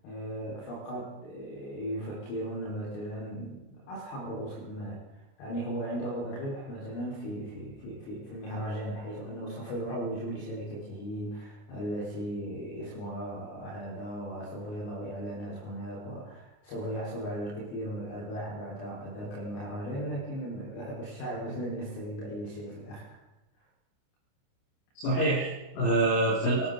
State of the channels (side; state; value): right; late; 29 ms